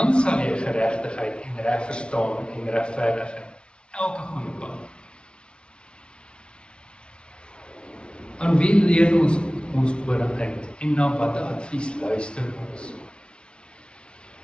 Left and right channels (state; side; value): late; right; 0.057 ms